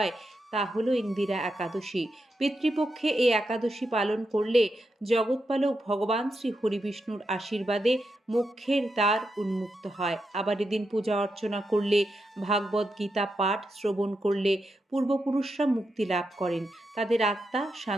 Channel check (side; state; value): both; normal; correlation 0.85